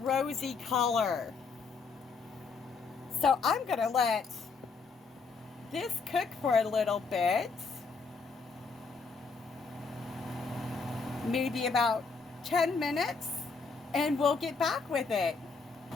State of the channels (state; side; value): quieter; right; 4.7 dB